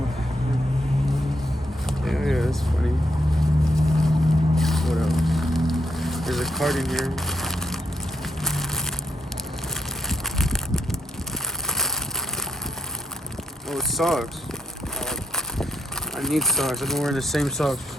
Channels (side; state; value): both; normal; correlation 0.80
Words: Yeah, that's funny. What else? There's a card in here. Oh, it's socks. I need socks. I've been wearing the same socks